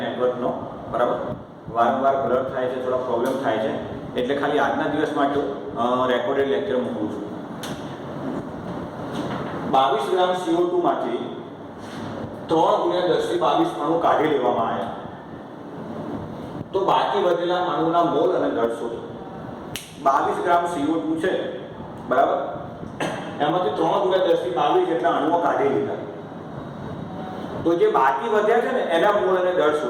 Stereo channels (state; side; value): identical; both; correlation 1.00